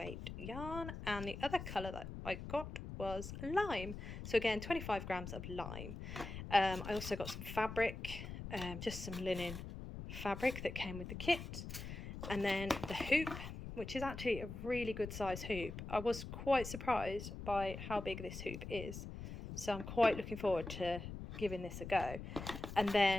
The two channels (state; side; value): noise; left; rumble, 8 dB below the sound